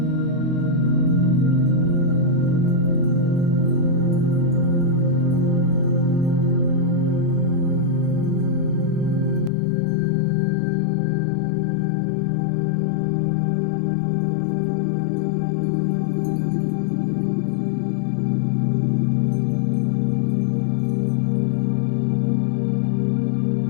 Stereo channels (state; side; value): drops out; right; at 9.5 s